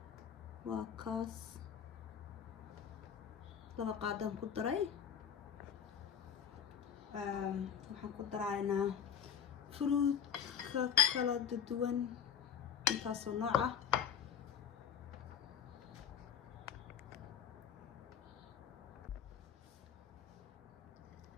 waa kaas laba qaadaan ku daray. Waxaan ku daraynaa fruit kala duwan intaasoo nooc ah.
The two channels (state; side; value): quieter; right; 8.2 dB